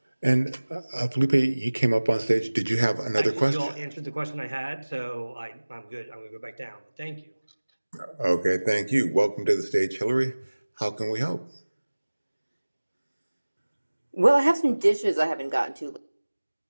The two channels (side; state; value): both; inverted; correlation -1.00